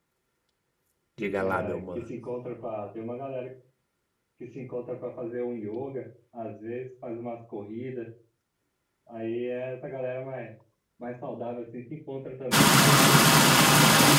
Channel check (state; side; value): identical; both; correlation 1.00